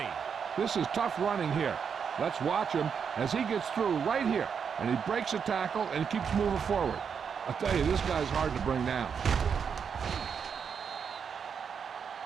This is tough running here. Let's watch him as he gets through right here, and he breaks a tackle and keeps moving forward. I'll tell you, this guy's hard to bring down.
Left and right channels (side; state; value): left; quieter; 6.8 dB